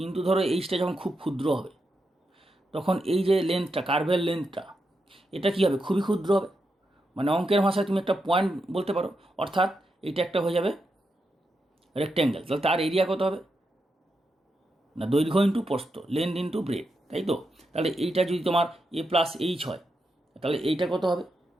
ধরো এইচটা যখন খুব ক্ষুদ্র হবে তখন এই যে লেন্থটা, কার্ভের লেন্থটা, এটা কী হবে, খুবই ক্ষুদ্র হবে, মানে অঙ্কের ভাষায় তুমি একটা পয়েন্ট বলতে পারো, অর্থাৎ এটা একটা হয়ে যাবে রেক্ট্যাঙ্গেল। তাহলে তার এরিয়া কত হবে না দৈর্ঘ্য ইন্টু প্রস্থ, লেন্থ ইন্টু ব্রেড, তাই তো। তাহলে এইটা যদি তোমার এ প্লাস এইচ হয় তাহলে এইটা কত হবে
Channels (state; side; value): normal; both; correlation 0.85